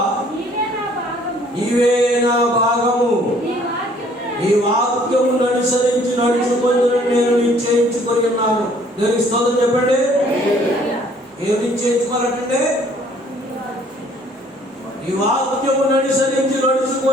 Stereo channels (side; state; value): both; normal; correlation 0.59